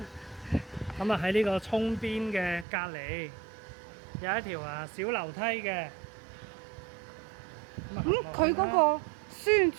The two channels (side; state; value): left; drops out; at 2.7 s